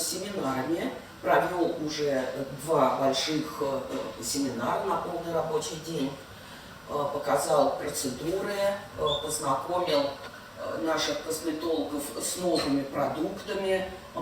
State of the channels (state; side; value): identical; both; correlation 1.00